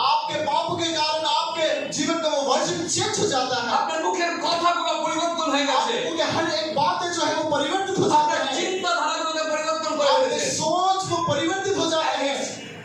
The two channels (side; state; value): both; identical; correlation 1.00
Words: आपके पापों के कारण आपके जीवन का वो वर्जन चेंज हो जाता है, আপনার মুখের কথাগুলো পরিবর্তন হয়ে গেছে, आपके हर एक बातें जो है वो परिवर्तित हो जाते আপনার हैं, চিন্তাধারাগুলোকে পরিবর্তन করে आपके ফেলেছে। सोच वो परिवर्तित हो जाते हैं